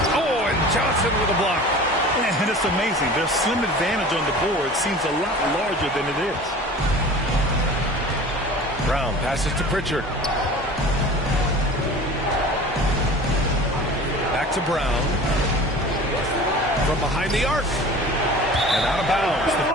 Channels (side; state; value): both; normal; correlation 0.40